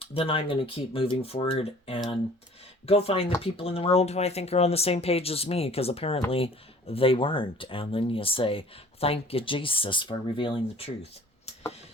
then I'm going to keep moving forward and go find the people in the world who I think are on the same page as me, because apparently they weren't. And then you say, thank you, Jesus, for revealing the truth.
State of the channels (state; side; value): normal; both; correlation 0.50